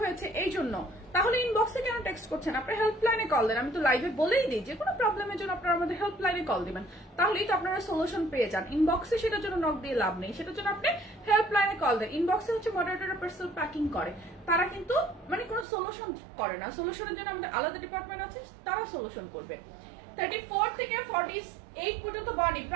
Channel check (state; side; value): drops out; left; at 15.7 s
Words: হয়েছে এই জন্য, তাহলে ইনবক্সে কেন টেক্সট করছেন? আপনার হেল্পলাইনে কল দেন। আমি তো লাইভে বলেই দিই যে কোনো প্রবলেমের জন্য আপনারা আমাদের হেল্পলাইনে কল দিবেন, তাহলেই তো আপনারা সলিউশন পেয়ে যান। ইনবক্সে সেটার জন্য নক দিয়ে লাভ নেই, সেটার জন্য আপনি হেল্পলাইনে কল দেন। ইনবক্সে হচ্ছে মডারেটর পার্সেল প্যাকিং করে, তারা কিন্তু মানে কোনো সলিউশন করে না। সলিউশনের জন্য আমাদের আলাদা ডিপার্টমেন্ট আছে, তারা সলিউশন করবে। 34 থেকে 48 পর্যন্ত বডি,